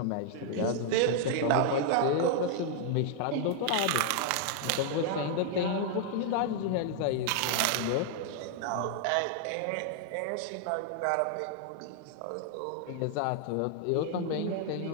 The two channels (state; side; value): different; both; correlation 0.00